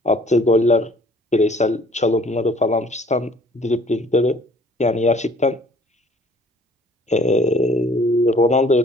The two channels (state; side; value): normal; both; correlation 0.56